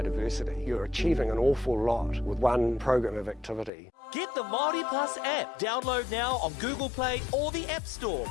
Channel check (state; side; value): drops out; right; at 3.7 s